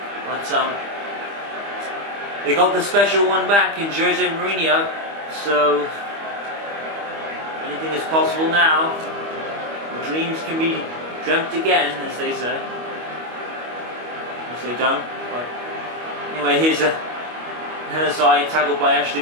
But they got the special one back in Jose Mourinho, so anything is possible now. Dreams can be dreamt again, as they say. which they don't. But anyway, here's a Hanasai tackled by Ashley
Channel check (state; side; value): late; left; 25 ms